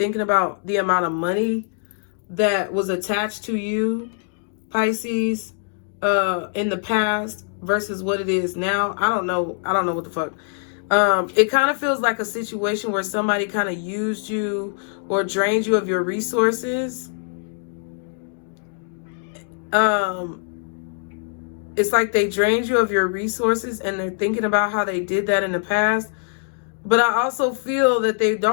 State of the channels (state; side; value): silent; right; digital silence